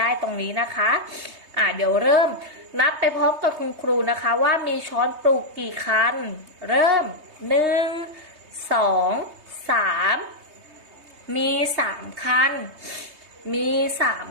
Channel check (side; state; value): left; late; 3.2 ms